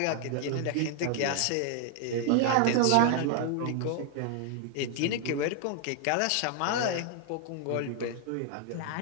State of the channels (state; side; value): different; both; correlation 0.00